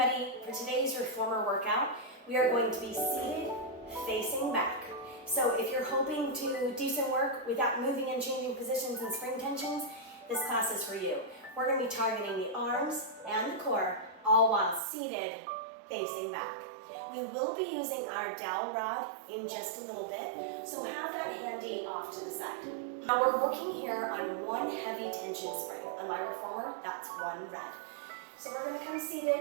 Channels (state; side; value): drops out; left; at 14.8 s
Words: for today's reformer workout, we are going to be seated facing back. So if you're hoping to do some work without moving and changing positions and spring tensions, this class is for you. We're going to be targeting the arms and the core, all while seated facing back. We will be using our dowel rod in just a little bit, so have that handy off to the side. Now we're working here on one heavy tension spring. On my reformer, that's one red. So we're going to come